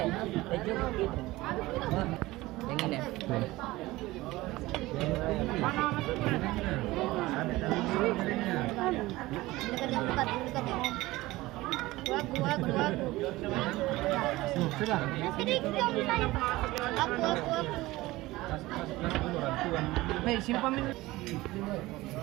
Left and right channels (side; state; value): left; quieter; 19.0 dB